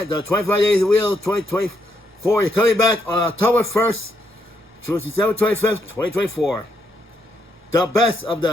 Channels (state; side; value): normal; both; correlation 0.77